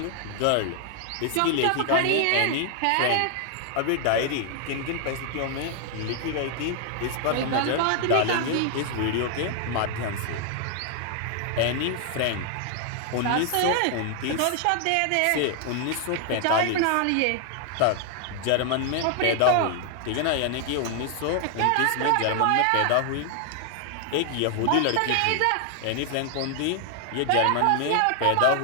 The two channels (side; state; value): both; different; correlation 0.00